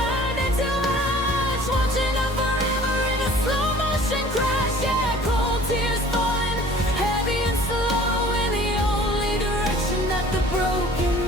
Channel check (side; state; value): both; normal; correlation 0.49